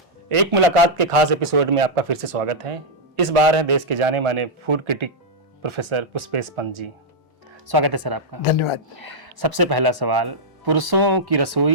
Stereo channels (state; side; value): normal; both; correlation -0.06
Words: एक मुलाकात के खास एपिसोड में आपका फिर से स्वागत है। इस बार है देश के जाने माने food critic professor Pushpesh Pant ji. स्वागत है सर आपका। धन्यवाद। सबसे पहला सवाल, पुरुषों की